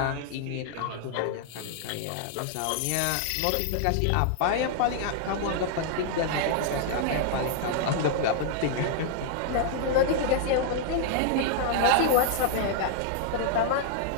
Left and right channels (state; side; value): different; both; correlation -0.01